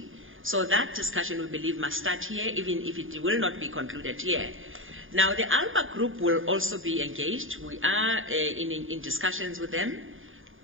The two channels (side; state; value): left; late; 0.59 ms